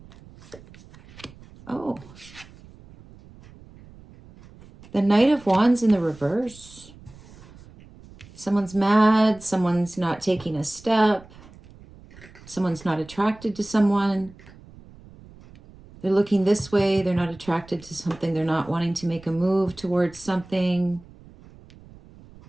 Oh, the Knight of Wands in the reverse. Someone's mad. Someone's not taking a step. Someone's not attracted to someone. They're looking this way. They're not attracted to something. They're not wanting to make a move towards something.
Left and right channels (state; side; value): noise; right; rumble, 22 dB below the sound